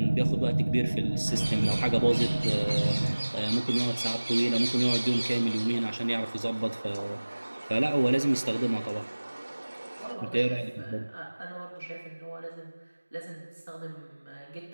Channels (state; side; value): inverted; both; correlation -1.00